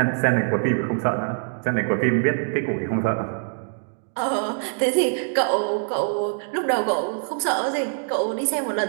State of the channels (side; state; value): left; silent; digital silence